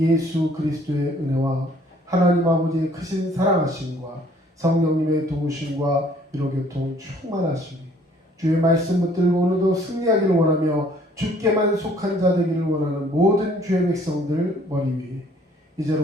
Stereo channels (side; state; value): both; normal; correlation 0.59